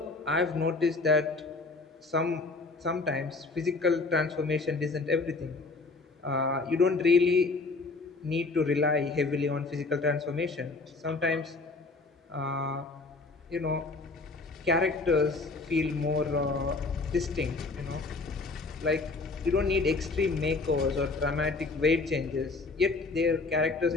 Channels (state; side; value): quieter; right; 3.7 dB